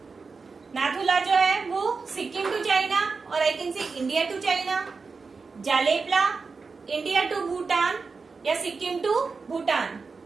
नाथुला जो है वो सिक्किम टू चाइना, और I can say India to China. Jelepla India to Bhutan या Sikkim to Bhutan.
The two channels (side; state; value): left; quieter; 4.6 dB